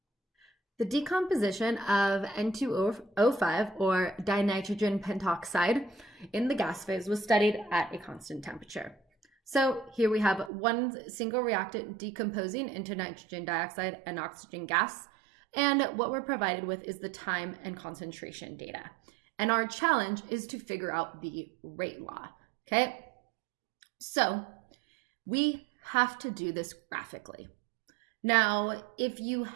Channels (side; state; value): left; drops out; at 10.5 s